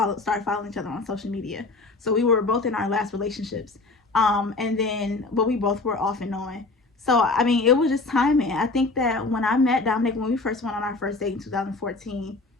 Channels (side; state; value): right; quieter; 3.5 dB